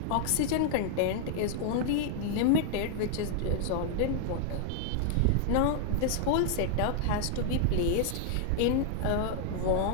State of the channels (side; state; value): both; different; correlation -0.01